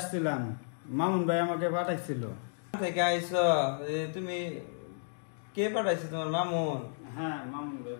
মামুন ভাই আমাকে পাঠাইছিল। থেকে আইছো? তুমি কে পাঠাইছে? তোমার মামুন? হ্যাঁ মামুন ভাই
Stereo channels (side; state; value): right; silent; digital silence